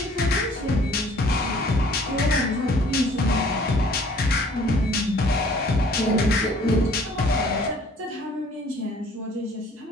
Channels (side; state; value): both; normal; correlation 0.55